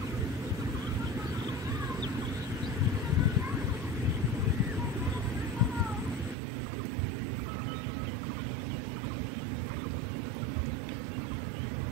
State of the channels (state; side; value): drops out; left; at 6.4 s